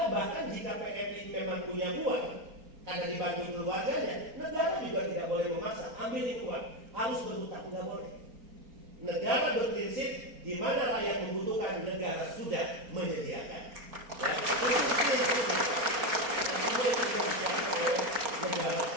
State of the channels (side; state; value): left; late; 4.3 ms